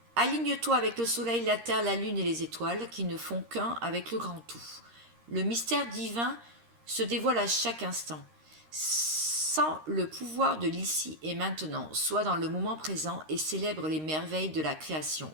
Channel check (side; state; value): left; late; 13 ms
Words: aligne-toi avec le soleil, la terre, la lune et les étoiles qui ne font qu'un avec le grand tout. Le mystère divin se dévoile à chaque instant. Sans le pouvoir de l'ici et maintenant, sois dans le moment présent et célèbre les merveilles de la création.